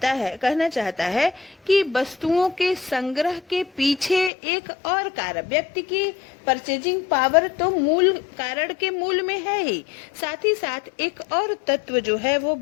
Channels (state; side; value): drops out; right; at 4.3 s